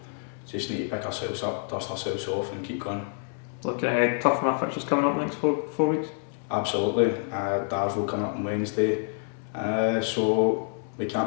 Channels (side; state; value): right; silent; 60 dB below the other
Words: just need to pick ourselves up, dust ourselves off and keep going. Looking ahead, tough from our fixtures coming up next four weeks? Absolutely. Darville coming up on Wednesday. So we